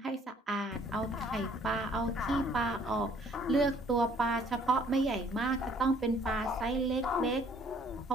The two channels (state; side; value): normal; both; correlation 0.60